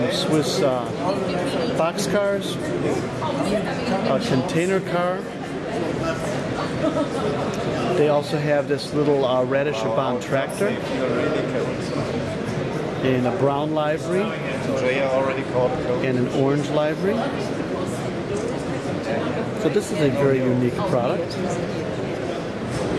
Swiss box cars, a container car. They also have this little Radish-Bahn tractor in a brown livery and an orange livery. So this is a very unique product. Do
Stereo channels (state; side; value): identical; both; correlation 1.00